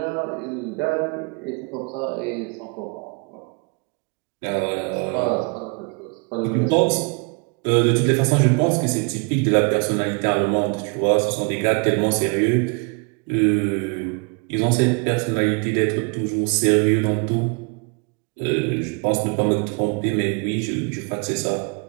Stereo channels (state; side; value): quieter; left; 33.9 dB